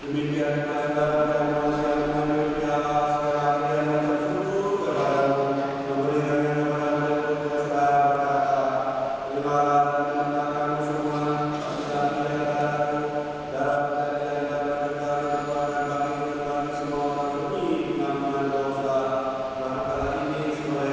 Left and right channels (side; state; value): both; identical; correlation 1.00